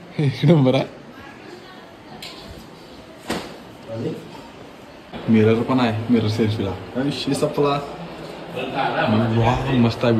आहे. मिरर पण आहे. मिरर सेल्फीला विषय सपला. वा मस्त आहे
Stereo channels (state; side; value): identical; both; correlation 1.00